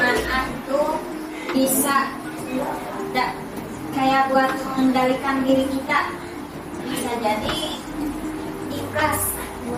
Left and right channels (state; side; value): identical; both; correlation 1.00